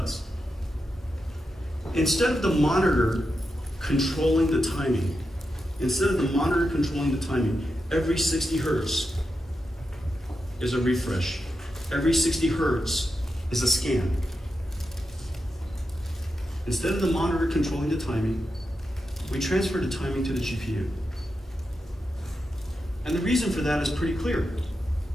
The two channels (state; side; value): normal; both; correlation 0.88